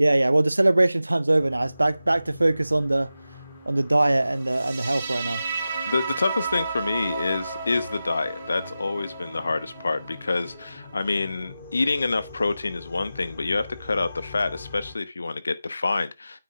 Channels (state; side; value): inverted; both; correlation -0.94